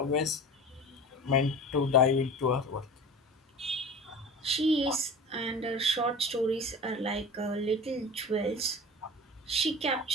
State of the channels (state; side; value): normal; both; correlation 0.35